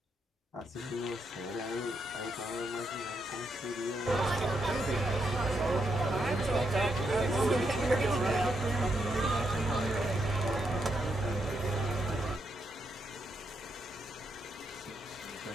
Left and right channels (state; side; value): normal; both; correlation 0.80